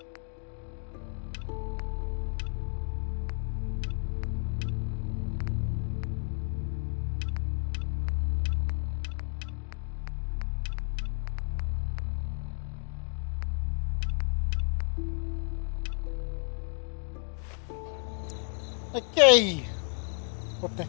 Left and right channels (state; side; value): quieter; right; 39.7 dB